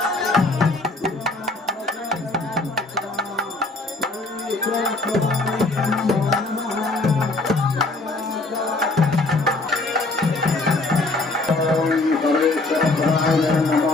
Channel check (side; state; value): right; quieter; 3.1 dB